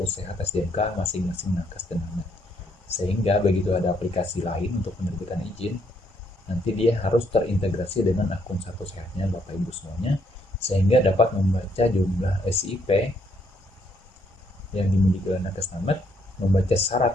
Sehat SDMK masing-masing nakes dan namet. Sehingga begitu ada aplikasi lain untuk penerbitan izin, nanti dia harus terintegrasi dengan akun Satu Sehatnya Bapak Ibu semuanya, sehingga dapat membaca jumlah SIP yang dimiliki oleh nakes namet, membaca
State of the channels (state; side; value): normal; both; correlation 0.71